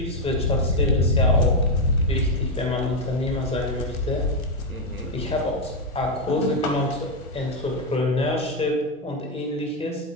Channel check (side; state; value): both; normal; correlation 0.04